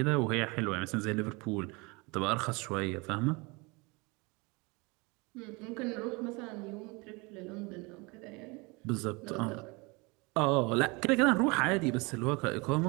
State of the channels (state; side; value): quieter; left; 27.1 dB